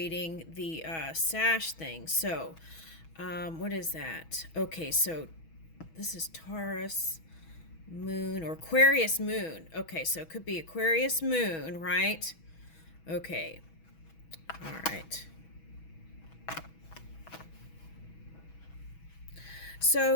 the sash thing. So, what is that? Okay, so this is Taurus moon or Aquarius moon. Okay, so it could be Aquarius moon, right? Okay, all right.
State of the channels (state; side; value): late; right; 6.2 ms